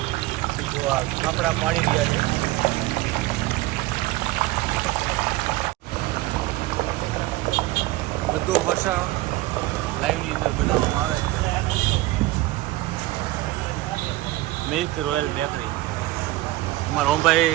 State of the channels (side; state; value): left; quieter; 18.4 dB